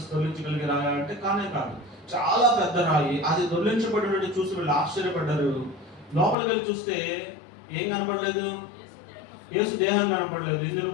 తొలగించగలిగే రాయా అంటే కానే కాదు. చాలా పెద్ద రాయి. అది దొర్లించబడి చూసి వీళ్ళు ఆశ్చర్యపడ్డారు. లోపలికి వెళ్ళి చూస్తే ఏం కనపడలేదు? యేసు దేహం కనపడలేదు. ఇందులో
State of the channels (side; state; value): right; drops out; at 6.4 s